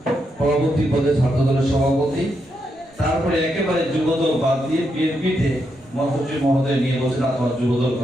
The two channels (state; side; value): noise; right; rumble, 29 dB below the sound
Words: পরবর্তী পদে ছাত্র দলের সভাপতি, তারপরে একেবারে যুবদল বাদ দিয়ে বিএনপিতে মহাসচিব মহোদয় নিয়ে বলছেন তোমার যুবদল